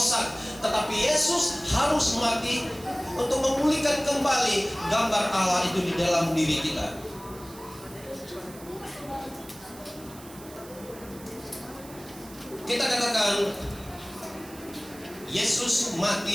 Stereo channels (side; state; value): right; noise; hiss, 19 dB below the sound